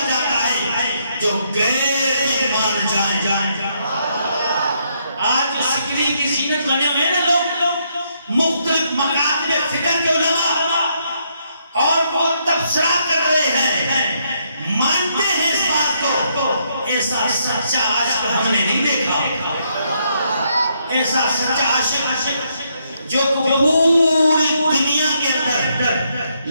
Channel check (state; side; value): inverted; both; correlation -0.75